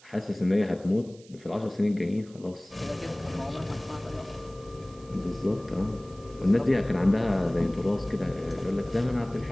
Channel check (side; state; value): right; noise; hiss, 25 dB below the sound